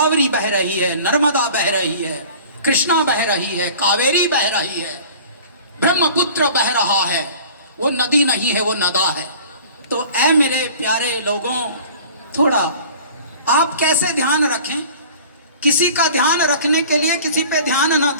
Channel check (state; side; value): inverted; both; correlation -0.44